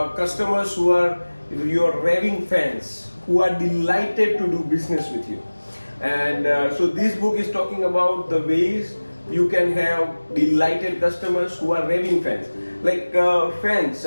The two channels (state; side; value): inverted; both; correlation -1.00